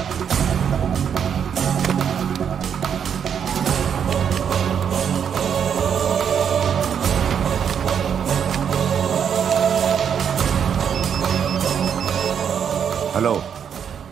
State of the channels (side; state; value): left; quieter; 7.9 dB